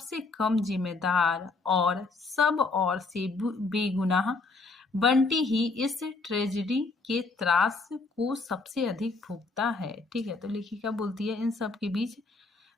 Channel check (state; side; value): quieter; right; 3.7 dB